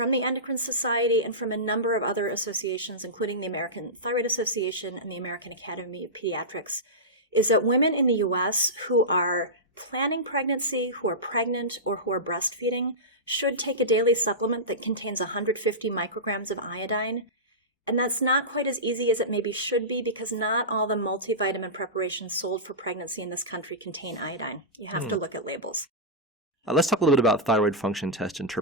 the Endocrine Society and from a number of other associations, including the American Thyroid Association and the American Academy of Pediatrics, is that women in the U.S. who are planning pregnancy, who are pregnant, or who are breastfeeding should take a daily supplement that contains 150 micrograms of iodine. And that's not quite as easy as it maybe should be because not all the multivitamin preparations sold for pregnancy in this country contain iodine. You have to look at labels. Let's talk a little bit about thyroid function test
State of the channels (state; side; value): normal; both; correlation -0.15